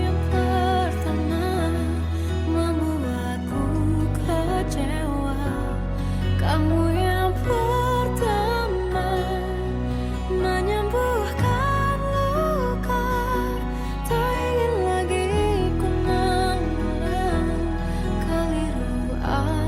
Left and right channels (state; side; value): identical; both; correlation 1.00